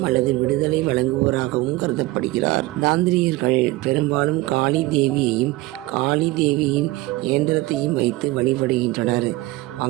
அல்லது விடுதலை வழங்குவோராகவும் கருதப்படுகிறார். தாந்திரியர்கள் பெரும்பாலும் காளி தேவியையும் காளி தேவியின் இயந்திரத்தையும் வைத்து வழிபடுகின்றனர்.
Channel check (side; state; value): left; quieter; 19.7 dB